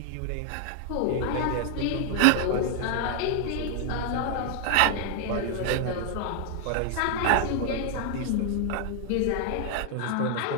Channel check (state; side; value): different; both; correlation 0.00